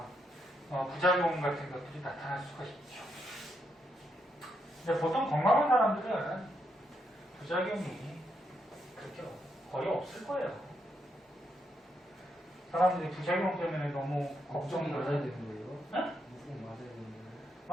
부작용 같은 것들이 나타날 수가 있죠. 근데 보통 건강한 사람들은 부작용이 그렇게 거의 없을 거예요. 사람들이 부작용 때문에 너무 걱정이 걱정을 맞아야 해요. 되는 거예요? 응? 무조건 맞아야 되는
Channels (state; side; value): normal; both; correlation 0.80